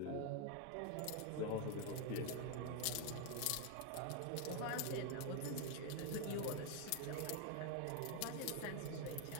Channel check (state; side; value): different; both; correlation 0.01